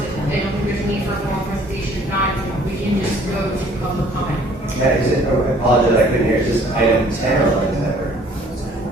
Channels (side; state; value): both; normal; correlation 0.57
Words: don't think there's a need for a formal presentation. If not, we can just go to public comment. Is it, I apologize, I couldn't hear. Is this item 10 or 11?